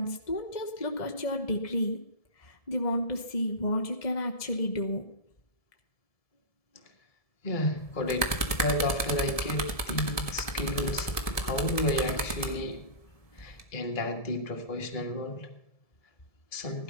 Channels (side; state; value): right; late; 1.7 ms